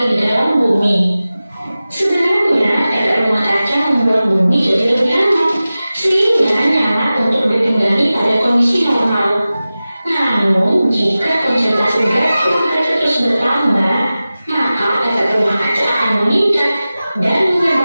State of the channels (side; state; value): both; inverted; correlation -0.96